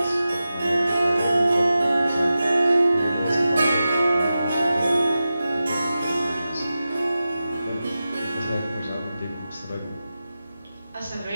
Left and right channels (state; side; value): inverted; both; correlation -0.93